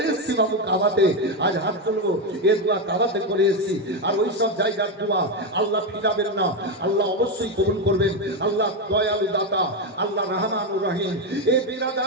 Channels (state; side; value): normal; both; correlation 0.09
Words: এসেছি বাবু কাবাতে, আজ হাত তুলবো, এই দোয়া কাবাতে করে এসেছি। আর ওই সব জায়গার দোয়া আল্লাহ ফিরাবেন না, আল্লাহ অবশ্যই কবুল করবেন। আল্লাহ দয়ালু দাতা, আল্লাহ রহমানুর রহিম। এই